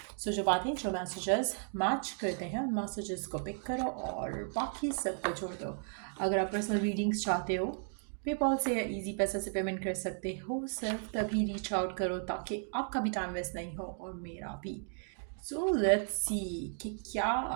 सो जो बातें जो मैसेजेस मैच करते हैं उन मैसेजेस को पिक करो और बाकी सब को छोड़ दो। अगर आप पर्सनल रीडिंग्स चाहते हो पेपॉल से या इजी पैसे से पेमेंट कर सकते हो। सिर्फ तभी रीच आउट करो ताकि आपका भी टाइम वेस्ट नहीं हो और मेरा भी। सो लेट्स सी कि क्या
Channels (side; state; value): left; silent; 55 dB below the other